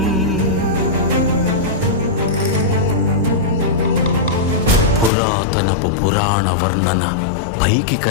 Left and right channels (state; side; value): drops out; right; at 5.1 s